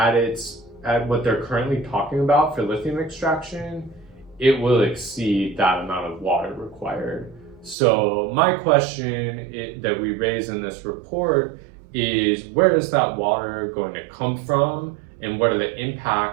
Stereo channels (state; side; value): drops out; left; at 7.8 s